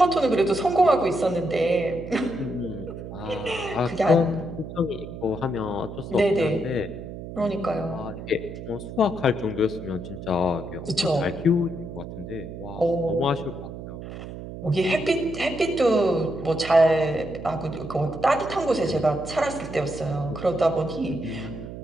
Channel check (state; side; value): noise; right; hum, 10 dB below the sound